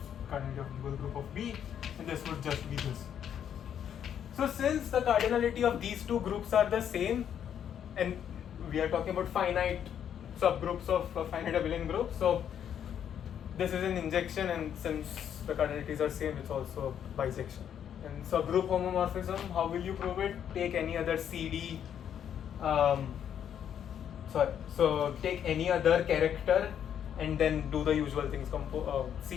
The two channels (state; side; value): quieter; right; 9.1 dB